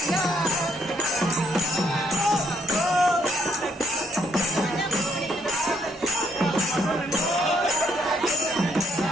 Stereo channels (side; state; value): both; normal; correlation 0.71